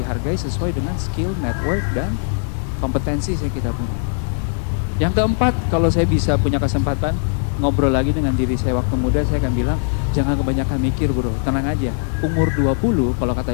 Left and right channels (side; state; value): right; silent; 64 dB below the other